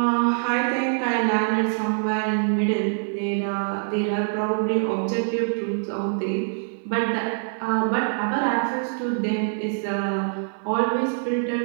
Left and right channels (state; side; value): silent; left; 56 dB below the other